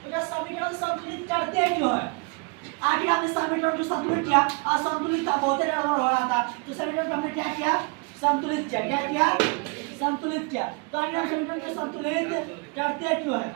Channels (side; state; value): left; quieter; 32.1 dB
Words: तो ये समीकरण संतुलित करते क्यों है, आखिर हमने समीकरण को संतुलित किया, असंतुलित था, बहुत गड़बड़ हो रहा था, तो समीकरण को हमने क्या किया, संतुलित किया। क्या किया, संतुलित किया। तो आगे हम समीकरण को संतुलित करते क्यों है,